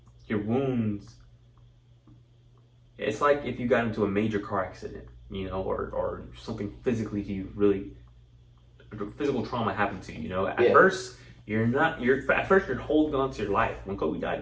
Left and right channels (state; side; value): identical; both; correlation 1.00